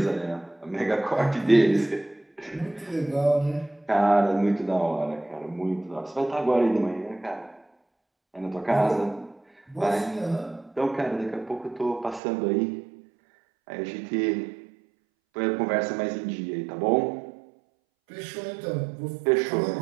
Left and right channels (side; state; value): left; drops out; at 12.2 s